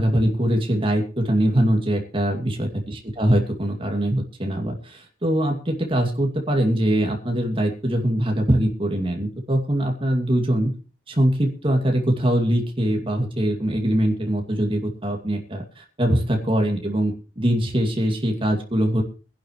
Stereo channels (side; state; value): both; normal; correlation 0.87